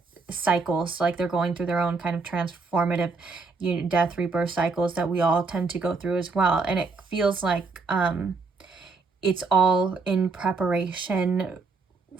cycles, like they're going through their own kind of transformative death, rebirth cycles that we all tend to go through as well. And it feels like it's all in preparation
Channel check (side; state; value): left; quieter; 4.2 dB